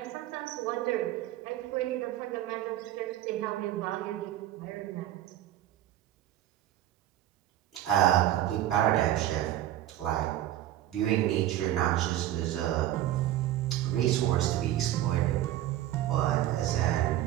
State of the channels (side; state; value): left; quieter; 13.3 dB